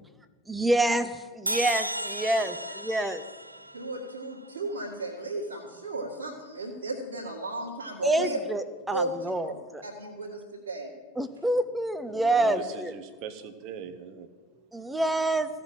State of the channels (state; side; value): normal; both; correlation 0.53